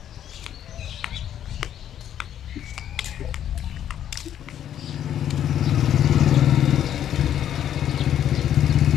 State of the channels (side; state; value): right; quieter; 10.4 dB